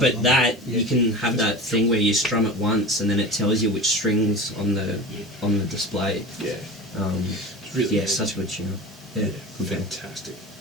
on. that Yeah. you can have that thing where you strum it once and then it tells you which strings on the display. Yeah. It's really yeah, good. such a good tune. Yeah, good pedal. Fantastic.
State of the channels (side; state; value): both; normal; correlation 0.33